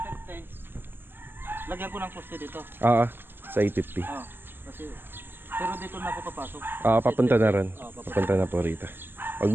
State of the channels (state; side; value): late; left; 0.097 ms